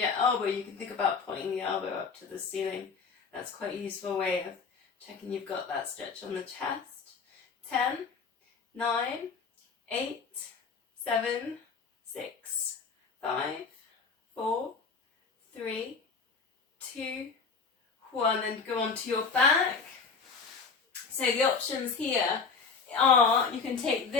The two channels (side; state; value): right; quieter; 5.1 dB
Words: elbow, you can think about pointing the elbow up to the ceiling. That's quite a useful way of checking you've got that stretch on the chest. 10, 9, 8, 7, 6, 5, 4, 3, 2, 1. Then go on to your back. So the options here are, you can take